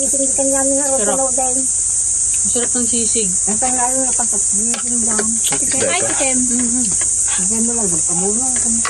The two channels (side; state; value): both; identical; correlation 1.00